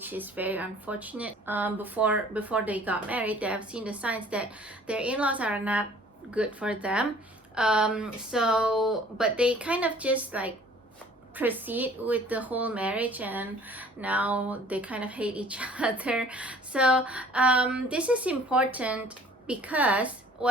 is very unfortunate. Before they got married, they have seen the signs that their in-laws are not good for them. But they kind of just like proceed with the whole marriage, and now they kind of hate each other. So this is important because,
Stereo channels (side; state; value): both; normal; correlation 0.52